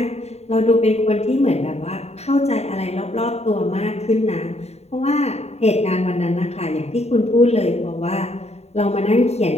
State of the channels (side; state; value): right; late; 0.31 ms